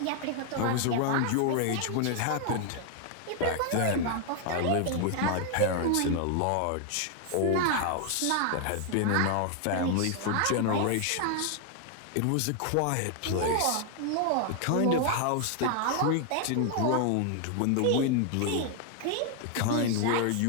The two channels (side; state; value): both; different; correlation 0.00